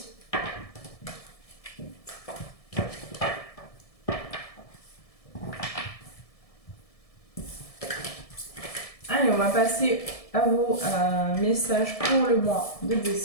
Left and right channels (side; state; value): right; late; 1.7 ms